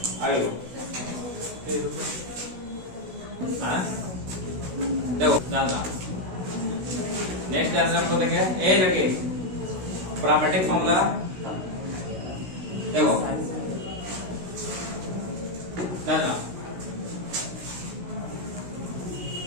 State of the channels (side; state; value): left; late; 16 ms